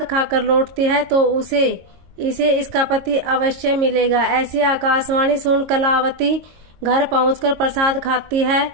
खाकर लौटती है तो इसे इसका पति अवश्य मिलेगा। ऐसी आकाशवाणी सुन कलावती घर पहुंचकर प्रसाद खाती है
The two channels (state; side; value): late; left; 22 ms